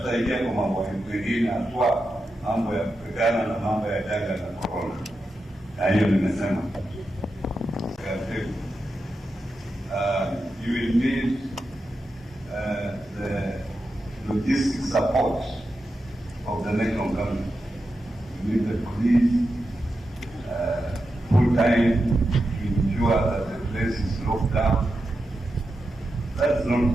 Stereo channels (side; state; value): both; normal; correlation 0.89